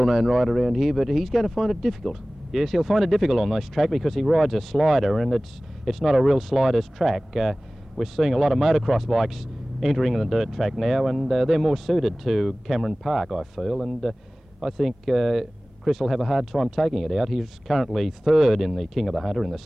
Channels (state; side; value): normal; both; correlation 0.98